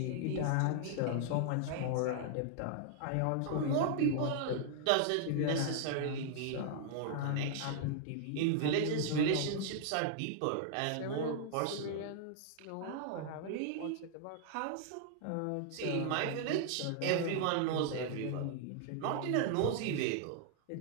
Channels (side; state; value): both; different; correlation -0.01